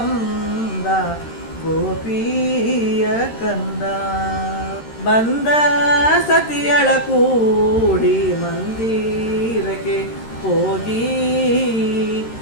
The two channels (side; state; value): right; late; 13 ms